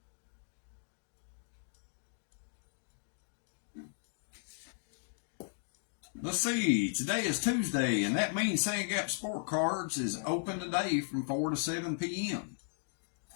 Let's see, today is Tuesday, and that means Sand Gap Sport Cards is open today from 4 to 7 p.m.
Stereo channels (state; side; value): silent; right; digital silence